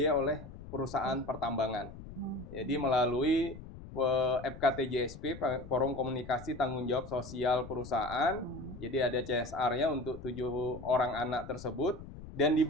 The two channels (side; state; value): left; noise; rumble, 14 dB below the sound